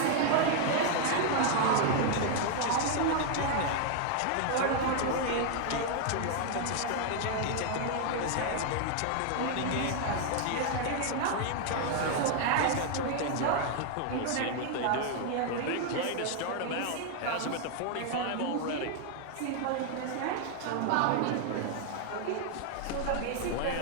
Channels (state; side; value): different; both; correlation 0.00